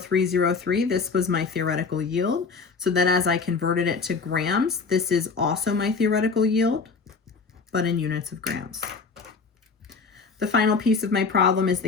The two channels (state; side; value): quieter; right; 4.9 dB